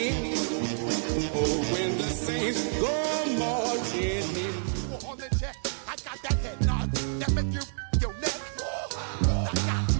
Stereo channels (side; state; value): left; silent; digital silence